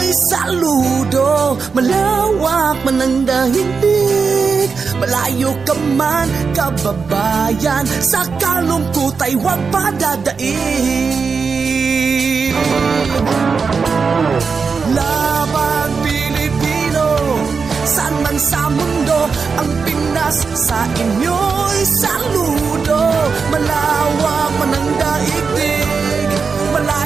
saludo. Malawak man ang daigdig, malayo ka man kababayan, sa kalungkot ay huwag padadaig. Laban Pilipino, saan man sa mundo, ang Pinas sa inyo'y saludo. Malawak man ang daigdig,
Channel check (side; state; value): left; quieter; 5.2 dB